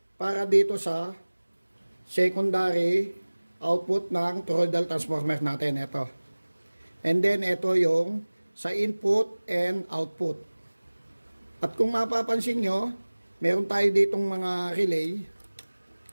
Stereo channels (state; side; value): inverted; both; correlation -1.00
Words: para dito sa secondary output ng toroidal transformer natin. Ito. And then, ito yung sa input and output. At kung mapapansin nyo, meron tayo ditong mga relay.